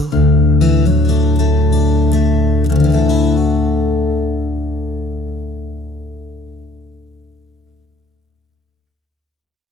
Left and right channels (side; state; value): both; normal; correlation 0.60